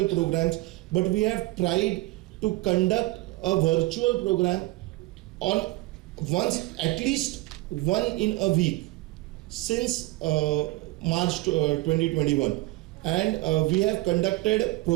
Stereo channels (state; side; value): quieter; left; 19.9 dB